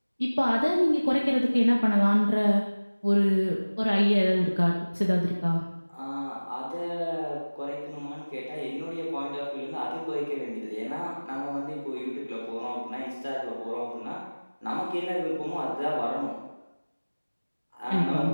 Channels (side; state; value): both; inverted; correlation -1.00